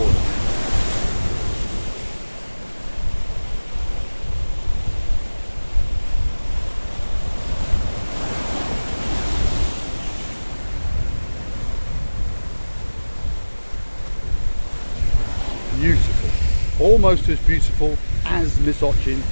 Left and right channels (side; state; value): both; inverted; correlation -1.00